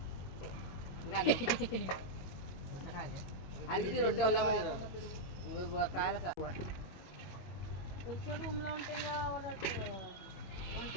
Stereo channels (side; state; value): right; late; 22 ms